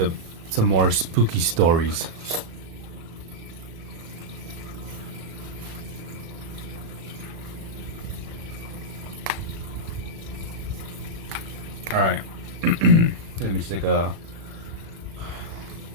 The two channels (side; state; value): left; late; 36 ms